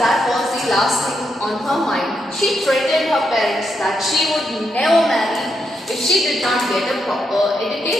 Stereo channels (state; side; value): normal; both; correlation 0.81